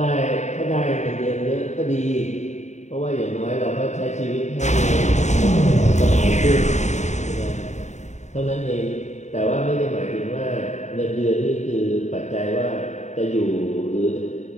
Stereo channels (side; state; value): right; late; 0.34 ms